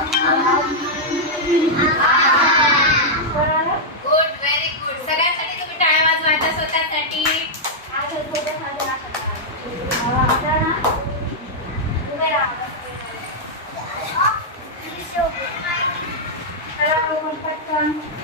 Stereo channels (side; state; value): both; normal; correlation -0.06